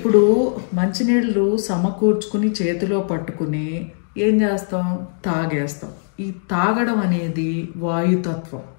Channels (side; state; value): right; silent; digital silence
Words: మంచినీళ్ళు సమకూర్చుకుని చేతిలో పట్టుకుని ఏం చేస్తాం? తాగేస్తాం. ఈ తాగడం అనేది వాయుతత్వం.